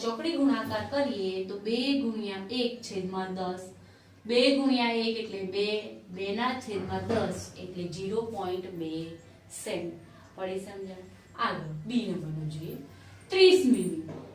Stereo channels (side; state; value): both; identical; correlation 1.00